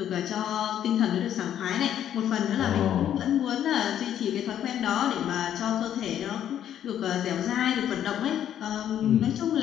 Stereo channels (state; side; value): quieter; right; 10.4 dB